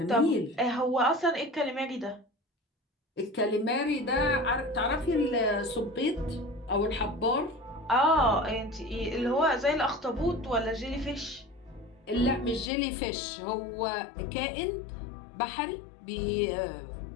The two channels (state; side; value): drops out; right; at 12.7 s